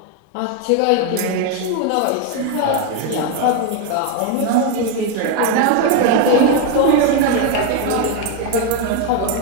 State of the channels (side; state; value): both; different; correlation 0.01